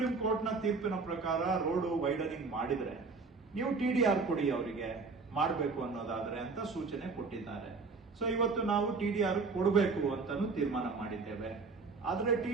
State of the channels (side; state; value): left; quieter; 4.3 dB